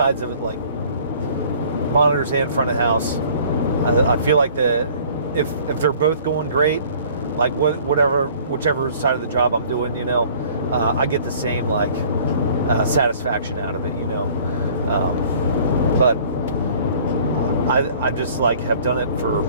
of it, like monitors and front of house. I feel like if they're both going great, like whichever side of the job I'm doing, you know, I get the same like satisfaction out of it, you know. But I just like have done it for,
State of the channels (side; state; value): both; inverted; correlation -0.53